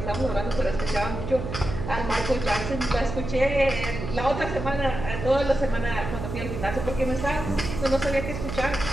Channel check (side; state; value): right; noise; hum, 6 dB below the sound